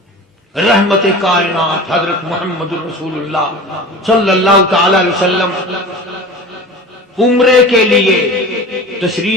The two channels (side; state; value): both; normal; correlation 0.35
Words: رحمت کائنات حضرت محمد رسول اللہ صلی اللہ تعالی علیہ وسلم عمرے کے لیے